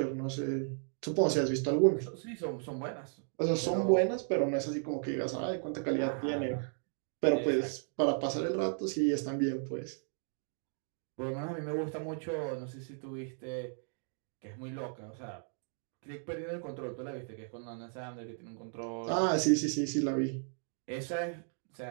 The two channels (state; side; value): silent; left; 55 dB below the other